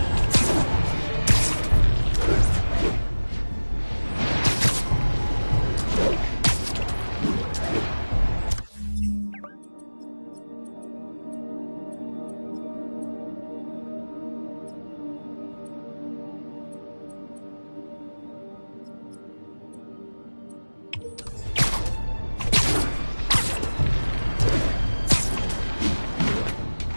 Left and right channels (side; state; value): both; inverted; correlation -1.00